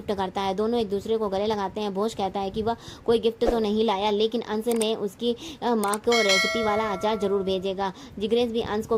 करता है। दोनों एक दूसरे को गले लगाते हैं। भोज कहता है कि वह कोई गिफ्ट तो नहीं लाया, लेकिन अंश ने उसकी माँ को रेसिपी वाला अचार जरूर भेजेगा। जिग्नेश भी अंश को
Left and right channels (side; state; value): both; identical; correlation 1.00